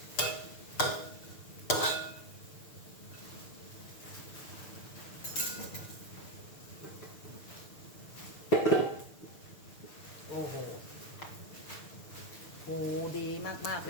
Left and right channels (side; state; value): right; late; 6.6 ms